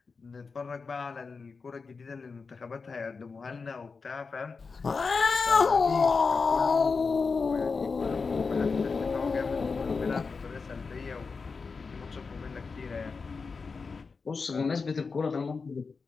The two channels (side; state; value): right; quieter; 4.7 dB